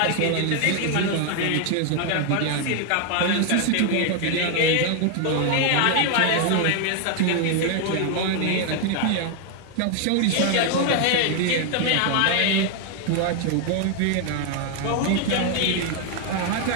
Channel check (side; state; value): both; different; correlation 0.01